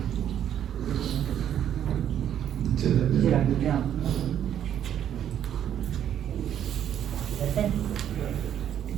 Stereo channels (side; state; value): left; quieter; 10.0 dB